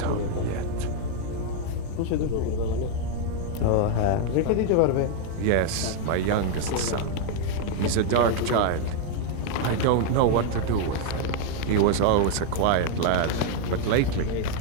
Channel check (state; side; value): different; both; correlation 0.00